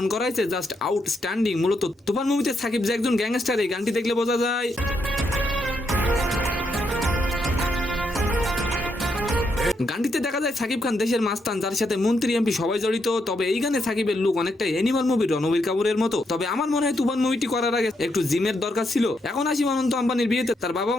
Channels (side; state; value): both; normal; correlation 0.79